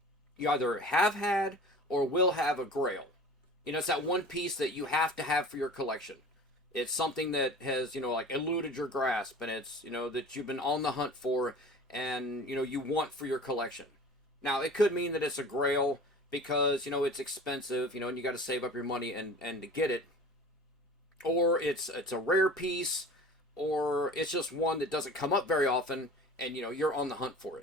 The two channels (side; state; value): both; normal; correlation 0.40